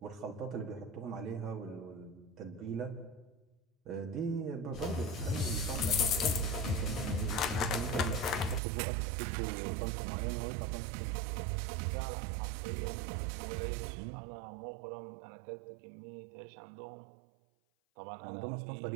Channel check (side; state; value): left; drops out; at 8.6 s